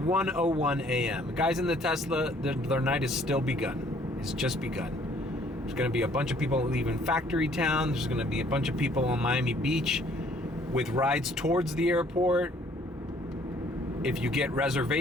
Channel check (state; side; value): normal; both; correlation 0.60